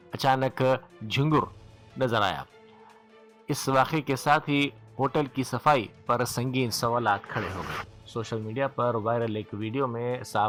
اچانک جھنگر نظر آیا۔ اس واقعے کے ساتھ ہی ہوٹل کی صفائی پر سنگین سوالات کھڑے ہو گئے۔ سوشل میڈیا پر وائرل ایک ویڈیو میں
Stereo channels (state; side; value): identical; both; correlation 1.00